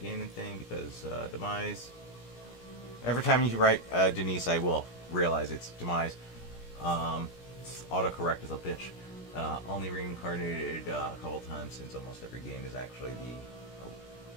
thing because Demise. Every time you write Denise, I will realize it's Demise. Autocorrect is a bitch. Only reincarnated a couple times since almost every game is actually the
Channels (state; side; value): late; right; 17 ms